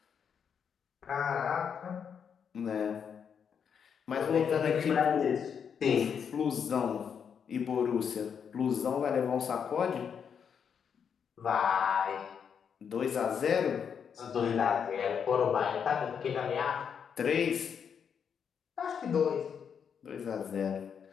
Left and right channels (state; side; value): quieter; right; 7.2 dB